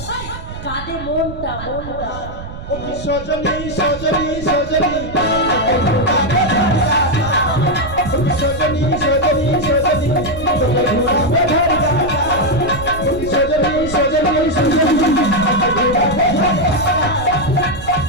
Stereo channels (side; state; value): right; noise; rumble, 11 dB below the sound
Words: কাঁদে মনটা মনটা ও কি সজনী সজনী সজনী ও কি সজনী সজনী সজনী তোকে ঘুরাবো ঝাড়গ্রাম।